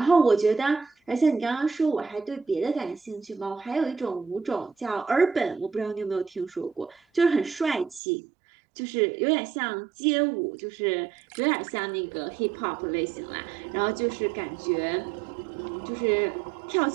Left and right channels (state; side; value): drops out; left; at 8.0 s